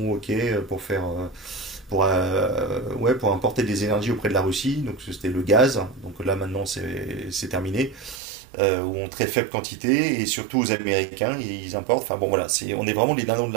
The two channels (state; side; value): drops out; left; at 8.2 s